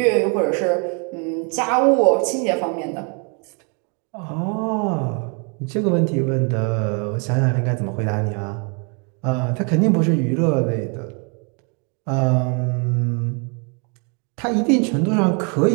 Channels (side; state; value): left; quieter; 36.5 dB